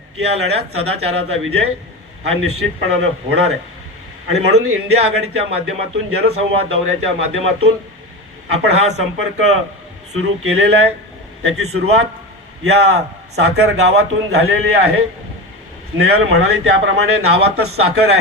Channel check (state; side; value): normal; both; correlation 0.23